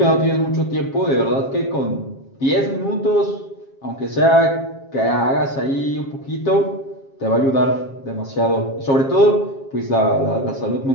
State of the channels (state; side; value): late; right; 7.4 ms